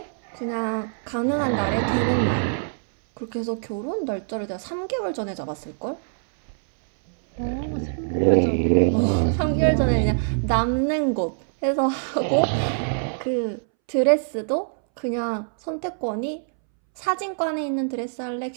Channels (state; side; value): silent; left; 62 dB below the other